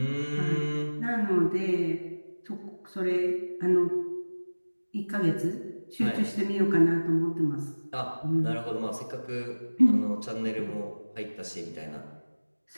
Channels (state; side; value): inverted; both; correlation -1.00